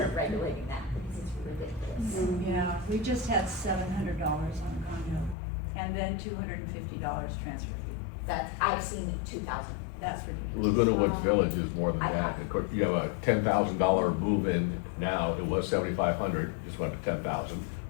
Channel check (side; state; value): right; drops out; at 5.4 s